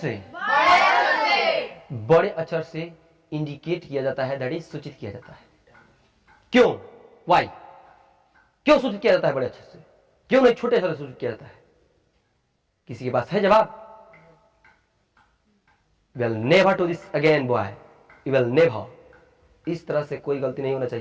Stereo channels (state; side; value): identical; both; correlation 1.00